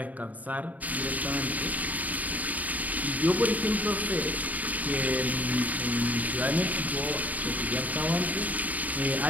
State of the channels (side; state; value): left; late; 0.075 ms